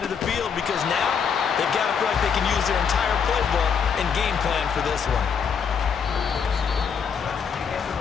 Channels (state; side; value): quieter; right; 6.7 dB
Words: of the field because now they've got to feel like they can use their entire playbook and game plan for this one.